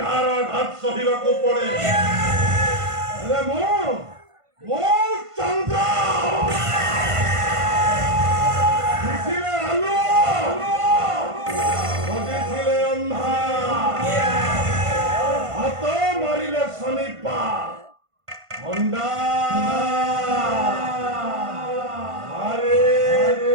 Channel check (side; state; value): left; late; 1.5 ms